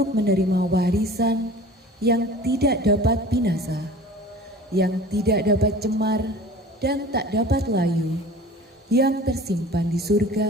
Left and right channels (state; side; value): normal; both; correlation 0.41